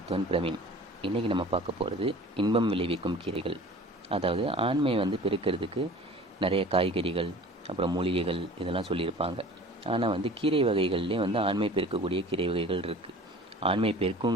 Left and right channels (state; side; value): normal; both; correlation 0.43